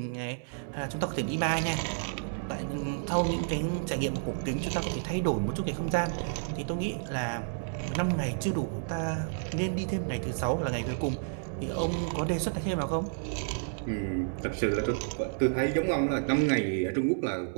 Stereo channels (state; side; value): silent; left; digital silence